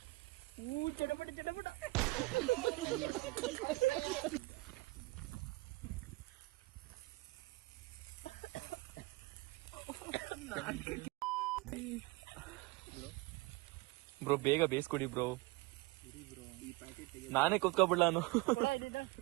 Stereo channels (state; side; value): quieter; left; 23.0 dB